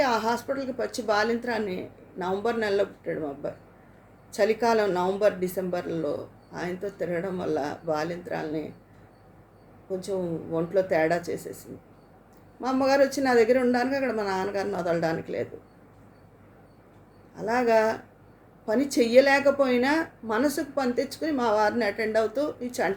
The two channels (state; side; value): identical; both; correlation 1.00